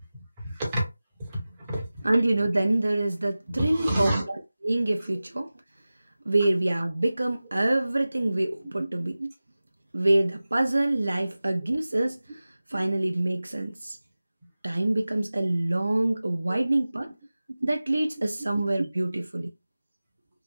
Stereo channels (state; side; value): inverted; both; correlation -0.97